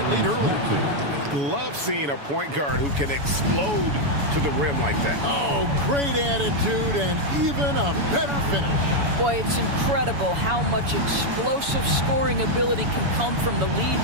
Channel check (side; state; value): left; late; 7.0 ms